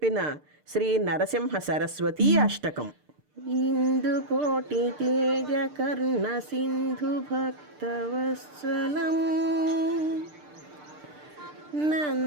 శ్రీ నరసింహ సరస్వతీ అష్టకం. ఇందుకోటి తేజ కర్ణ సింధు భక్తవత్సలం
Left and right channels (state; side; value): late; left; 6.7 ms